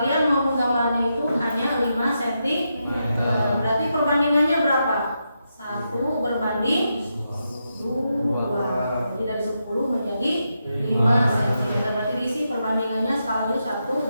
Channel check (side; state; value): both; inverted; correlation -0.84